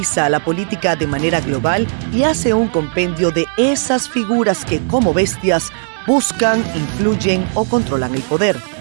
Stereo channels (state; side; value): silent; left; digital silence